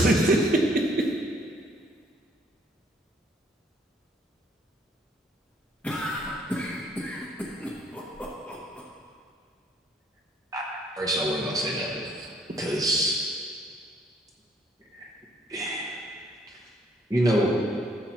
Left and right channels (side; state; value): both; normal; correlation 0.65